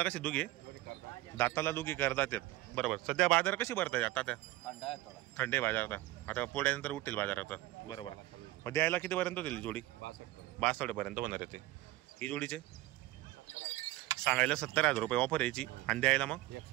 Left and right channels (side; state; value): left; quieter; 17.5 dB